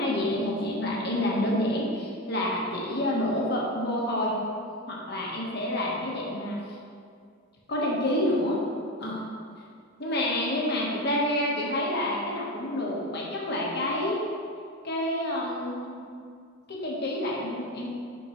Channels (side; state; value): both; normal; correlation 0.18